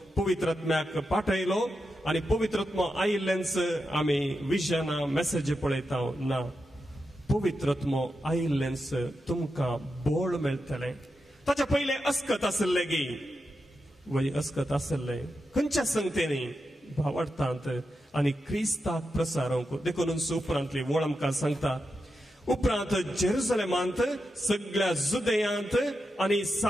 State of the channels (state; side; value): normal; both; correlation 0.88